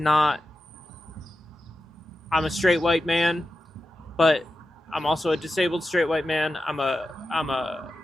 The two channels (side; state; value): both; normal; correlation 0.91